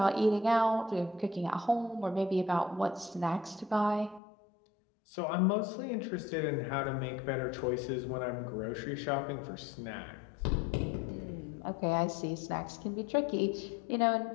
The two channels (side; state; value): right; drops out; at 4.2 s